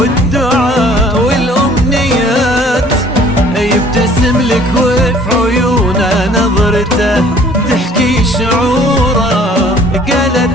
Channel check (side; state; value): both; normal; correlation 0.54